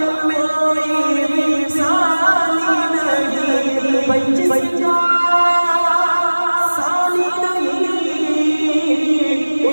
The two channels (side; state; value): both; inverted; correlation -1.00